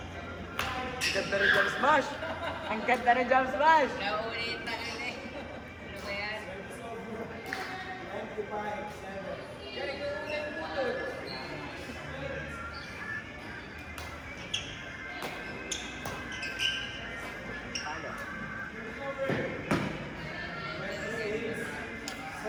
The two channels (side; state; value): both; identical; correlation 1.00